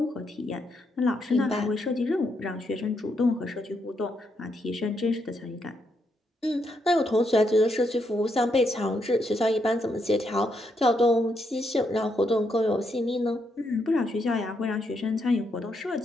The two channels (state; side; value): normal; both; correlation 0.78